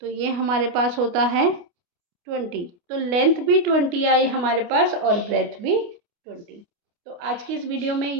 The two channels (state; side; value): late; left; 29 ms